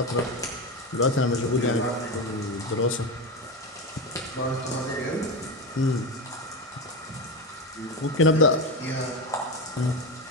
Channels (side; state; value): both; normal; correlation 0.17